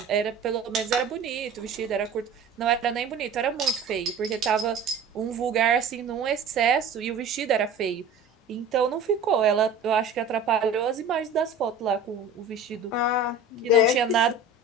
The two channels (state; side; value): quieter; left; 3.8 dB